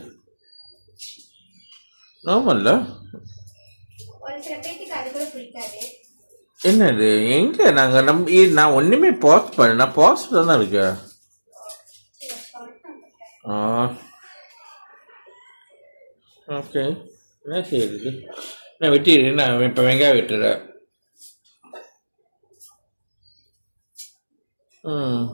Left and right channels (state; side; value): inverted; both; correlation -1.00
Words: நார்மல்ல. ஒரு சில பேருக்கு அது கூட பிடிக்காது. என்னது எங்க நான் ஒண்ணுமே பாஸ் பண்ண, நான் பாஸ் தான் இருக்கு. ஓகே என்ன செய்யுது நான் வெட்டிடு நான் இப்போ வெங்காயம் வெட்டுறேன்